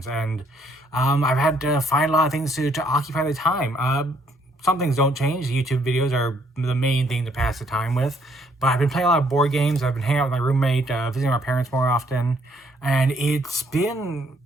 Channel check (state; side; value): normal; both; correlation 0.68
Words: and I've had to find a lot of things to occupy the time. Some things don't change. YouTube videos are the main thing to pass the time with, but I've been playing a lot of board games. I've been hanging out with my roommate, visiting my parents more often, and it's been